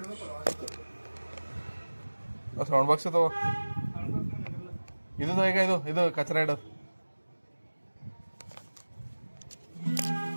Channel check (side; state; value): both; inverted; correlation -1.00